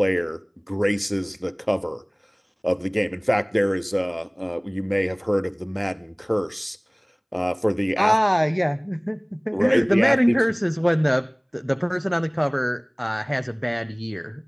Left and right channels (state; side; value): identical; both; correlation 1.00